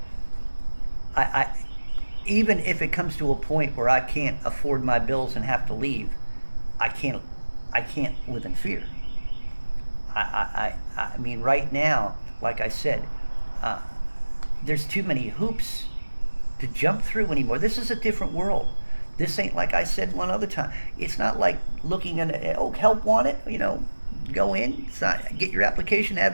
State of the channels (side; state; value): both; inverted; correlation -1.00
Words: I even if it comes to a point where I can't afford my bills and have to leave, I can't live in fear. I mean, right now, like I said, there's too many hoops to jump through anymore. This is a different world. This ain't, like I said one other time, it's not like looking at, help wanted, go in, get your application, have